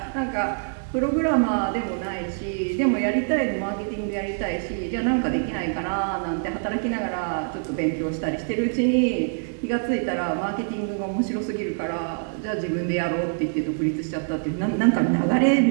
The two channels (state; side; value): silent; left; digital silence